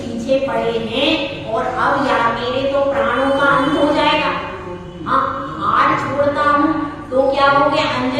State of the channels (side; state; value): both; identical; correlation 1.00